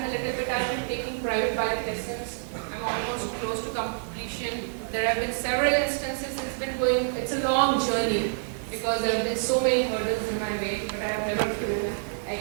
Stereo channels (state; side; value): silent; left; digital silence